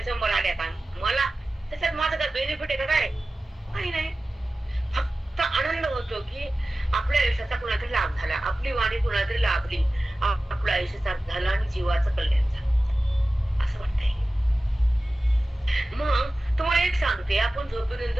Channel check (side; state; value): both; normal; correlation 0.95